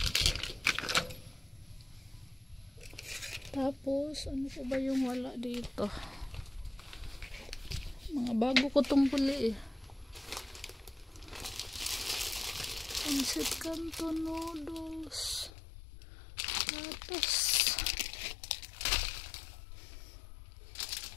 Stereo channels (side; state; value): right; drops out; at 15.5 s